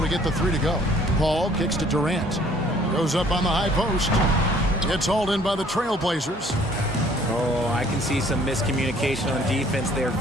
to get the three to go, Paul kicks to Durant. Goes up on the high post. It's hauled in by the Trailblazers. Oh, I can see some miscommunication on defense there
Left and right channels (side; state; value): both; normal; correlation 0.57